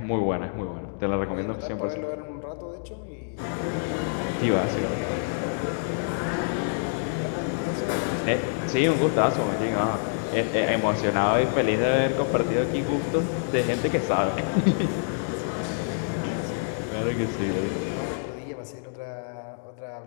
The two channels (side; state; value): right; silent; digital silence